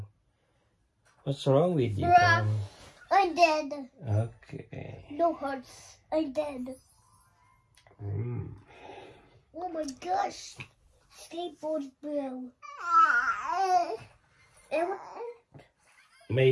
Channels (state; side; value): identical; both; correlation 1.00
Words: What's wrong with you? Bruh, I'm dead. Okay. No hearts. I'm dead. Oh my gosh. Skateboard bro.